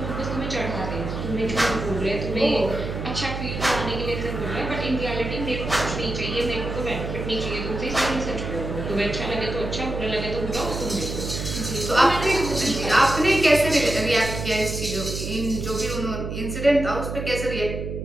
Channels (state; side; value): noise; right; hum, 5 dB below the sound